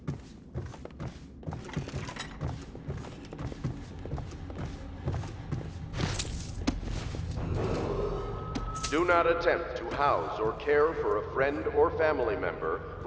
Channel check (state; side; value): identical; both; correlation 1.00